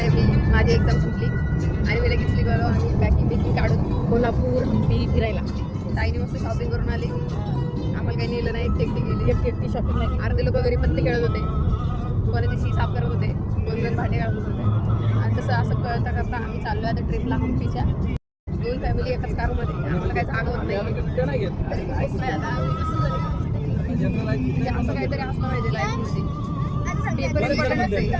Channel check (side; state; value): both; identical; correlation 1.00